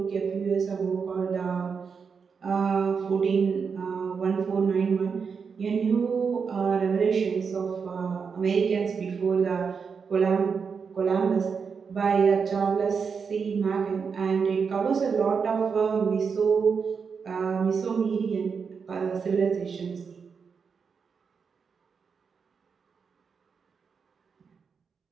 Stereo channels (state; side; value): quieter; left; 5.8 dB